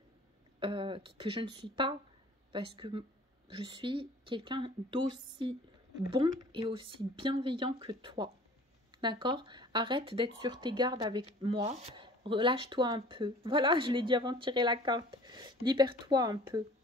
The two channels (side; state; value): both; normal; correlation 0.48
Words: je ne suis pas. Parce que je suis quelqu'un d'aussi bon et aussi bienveillant que toi. D'accord? Arrête d'être sur tes gardes avec moi. Relâche-toi un peu. Voilà, je l'ai dit avant de tirer la carte. Libère-toi un peu.